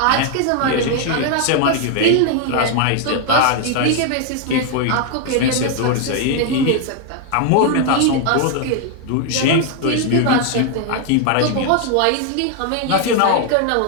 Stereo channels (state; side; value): different; both; correlation 0.00